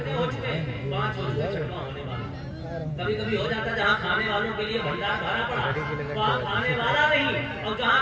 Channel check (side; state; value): both; identical; correlation 1.00